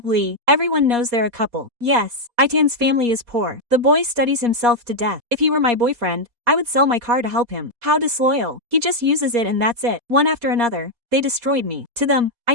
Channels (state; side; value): late; left; 4.2 ms